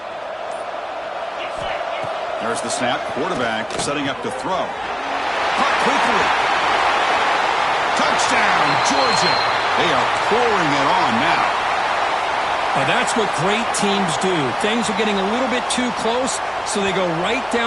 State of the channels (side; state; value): both; identical; correlation 1.00